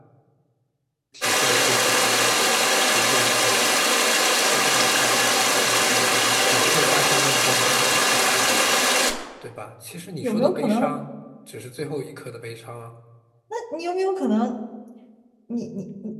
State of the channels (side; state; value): both; identical; correlation 1.00